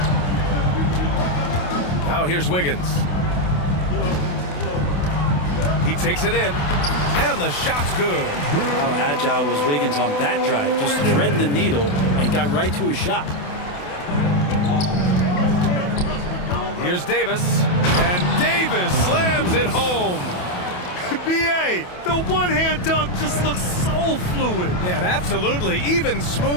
Now here's Wiggins. He takes it in, and the shot's good. How agile was Wiggins on that drive? Just threading the needle and got right to his shot. Here's Davis, and Davis slams it home. B.A., the one-hand dunk just looks so fluid. Yeah, absolutely. Even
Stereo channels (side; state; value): right; late; 28 ms